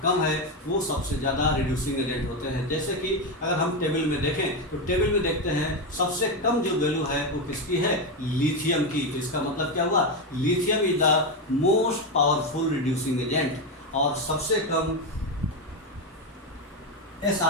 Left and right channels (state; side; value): normal; both; correlation 0.10